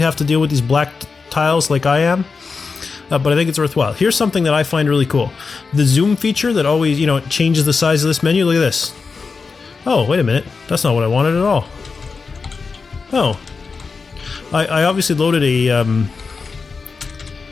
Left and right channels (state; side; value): quieter; right; 4.7 dB